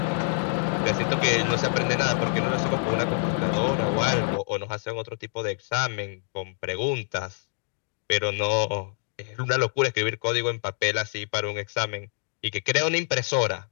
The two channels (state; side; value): silent; right; 61 dB below the other